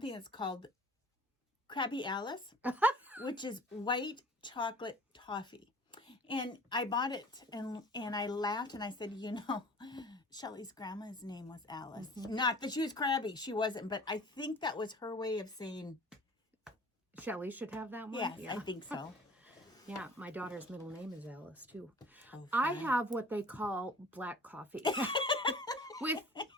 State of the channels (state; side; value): normal; both; correlation 0.46